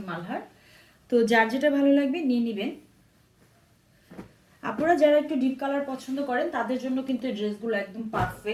মালহার। তো যার যেটা ভালো লাগবে নিয়ে নেবেন। আপনারা যারা একটু ডিপ কালার পছন্দ করেন তাদের জন্য কিন্তু এই ড্রেসগুলো একদম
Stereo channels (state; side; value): identical; both; correlation 1.00